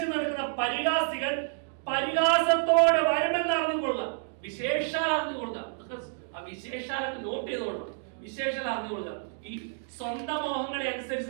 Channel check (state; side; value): silent; left; 58 dB below the other